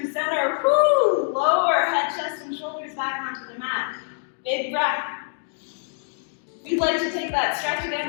center. Woo! Lower head, chest, and shoulders back onto the mat. Big breath. If you'd like to take that stretch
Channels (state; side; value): silent; right; digital silence